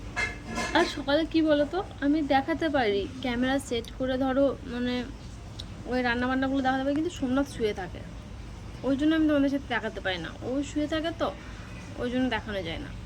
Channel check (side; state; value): both; identical; correlation 1.00